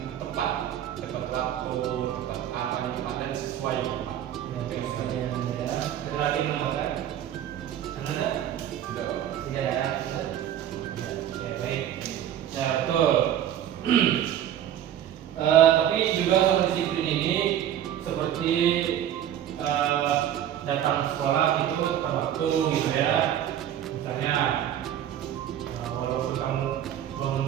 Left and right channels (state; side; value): quieter; left; 10.8 dB